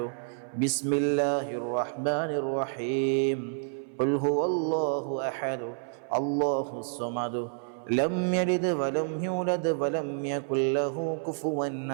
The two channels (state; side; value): silent; left; 57 dB below the other